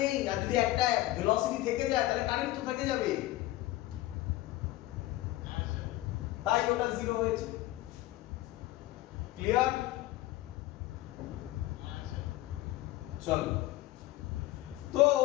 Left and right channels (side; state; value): right; quieter; 17.1 dB